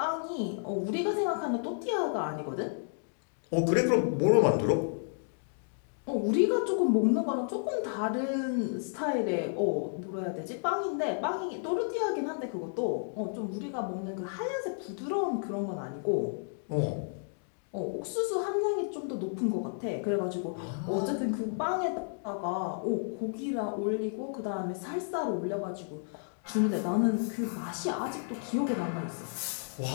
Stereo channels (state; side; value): silent; right; digital silence